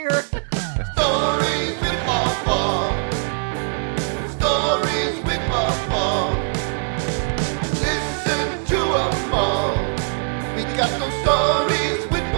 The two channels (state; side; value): silent; left; digital silence